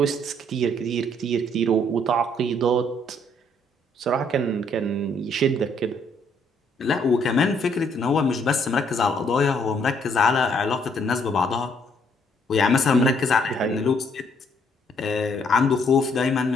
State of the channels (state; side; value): normal; both; correlation 0.67